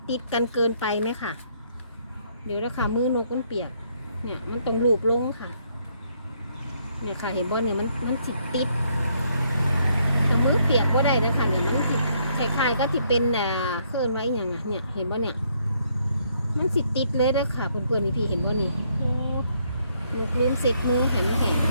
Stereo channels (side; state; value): both; inverted; correlation -0.71